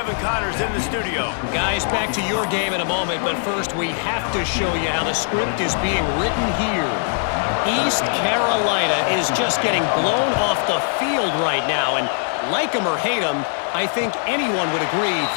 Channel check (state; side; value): silent; right; 60 dB below the other